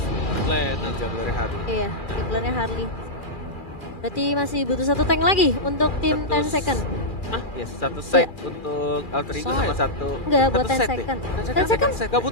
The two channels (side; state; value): right; late; 2.2 ms